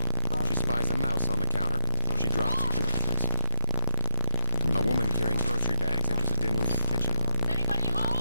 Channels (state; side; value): inverted; both; correlation -0.39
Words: She spies a mouse on the counter. She drops her groceries. A woman carrying grocery bags enters a dimly lit kitchen. Is anybody